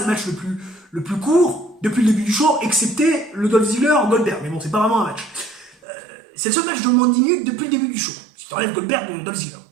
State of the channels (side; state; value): left; drops out; at 5.8 s